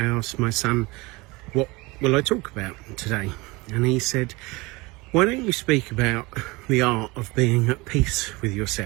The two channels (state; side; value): quieter; left; 23.8 dB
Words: asked my son, what will I talk about today? And he said, why don't you speak about the art of being at peace with